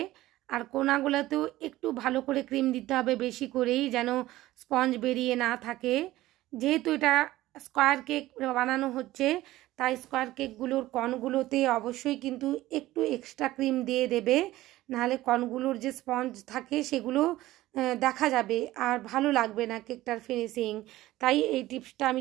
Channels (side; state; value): left; quieter; 16.4 dB